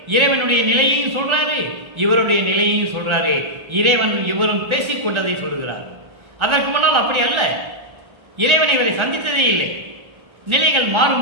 இறைவனுடைய நிலையையும் சொல்றாரு, இவருடைய நிலையையும் சொல்றாரு. இறைவன் இவரும் பேசிக்கொண்டதை சொல்லுகிறார். அதற்கு முன்னால் அப்படி அல்ல, இறைவன் இவரை சந்தித்ததே இல்லை. நிலைகள்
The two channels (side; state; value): left; late; 1.4 ms